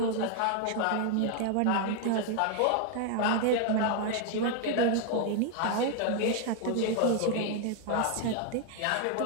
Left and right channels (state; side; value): different; both; correlation 0.00